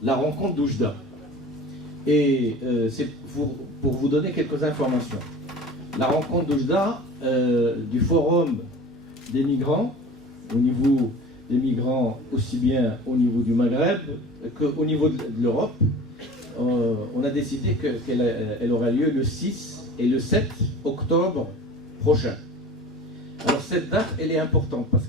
la rencontre d'Oujda. Et c'est pour vous donner quelques informations. La rencontre d'Oujda, du forum des migrants, au niveau des migrants aussi bien au niveau du Maghreb qu'au niveau de l'Europe, on a décidé qu'elle aura lieu le 6 et le 7 octobre prochain. Alors cette date, elle est importante parce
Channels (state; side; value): normal; both; correlation 0.40